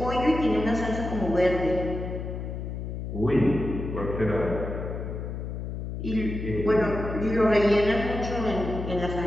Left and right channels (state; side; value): noise; left; hum, 6 dB below the sound